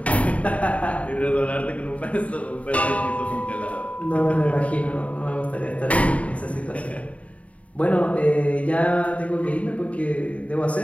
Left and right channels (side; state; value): right; late; 0.066 ms